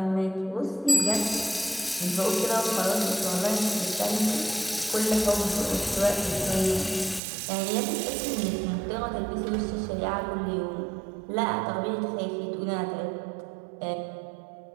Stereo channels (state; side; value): drops out; left; at 7.2 s